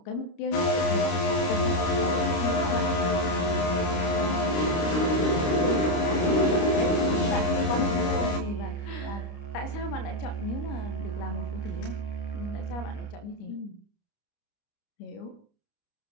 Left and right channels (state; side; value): late; right; 29 ms